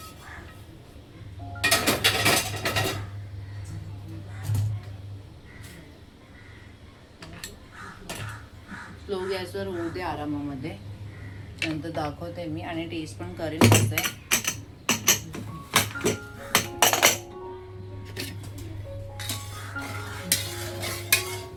स्लो गॅसवर होऊ दे आरामामध्ये, नंतर दाखवते मी आणि टेस्ट पण करेल कसं आहे.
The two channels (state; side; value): identical; both; correlation 1.00